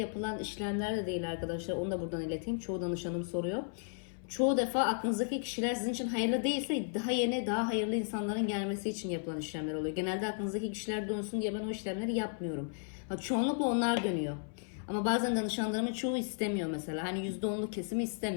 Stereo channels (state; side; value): silent; right; 55 dB below the other